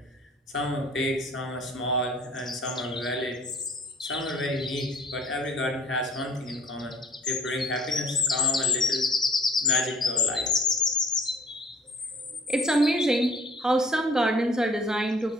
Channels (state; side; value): normal; both; correlation 0.52